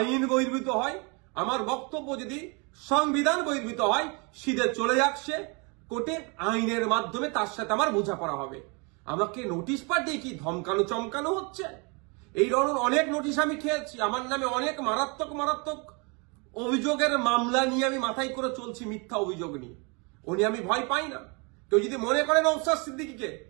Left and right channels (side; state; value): left; quieter; 31.6 dB